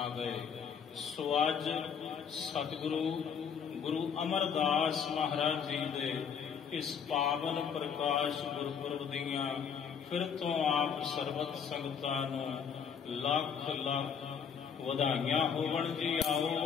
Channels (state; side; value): quieter; right; 7.1 dB